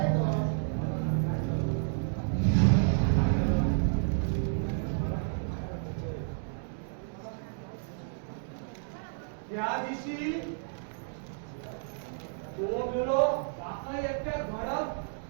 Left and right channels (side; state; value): left; silent; digital silence